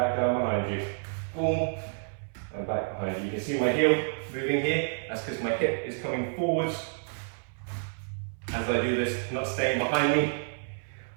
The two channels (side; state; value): left; silent; 58 dB below the other